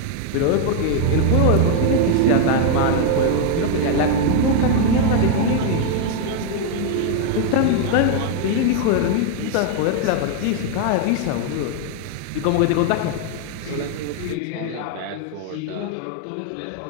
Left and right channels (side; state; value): both; different; correlation 0.00